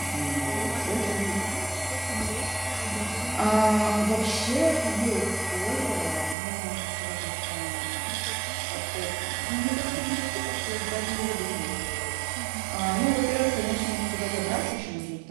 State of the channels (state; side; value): drops out; left; at 6.4 s